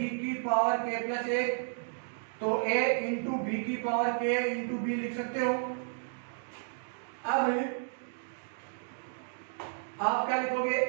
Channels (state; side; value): silent; left; digital silence